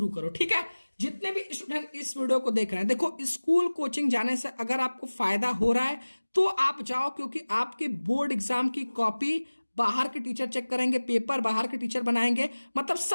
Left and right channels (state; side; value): inverted; both; correlation -1.00